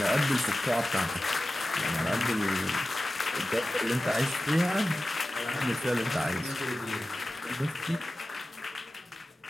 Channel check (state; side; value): normal; both; correlation 0.95